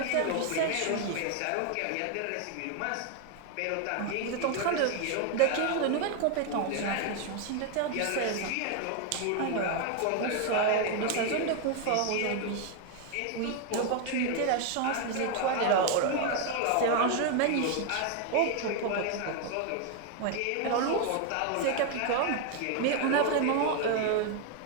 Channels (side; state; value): both; different; correlation 0.01